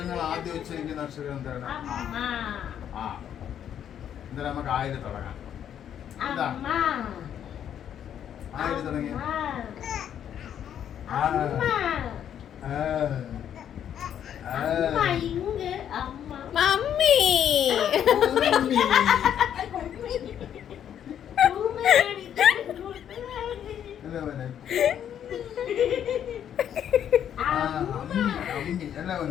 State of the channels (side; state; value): right; quieter; 9.5 dB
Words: ആദ്യം ഉച്ചരിക്കുന്ന അക്ഷരം എന്താണ്? ആ, എന്തായാലും നമുക്ക് ആയിരം തുടങ്ങാം. എന്താ ആയിരം തുടങ്ങി? മമ്മി